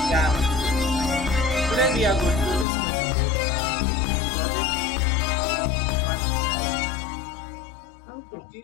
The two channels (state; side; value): drops out; right; at 2.7 s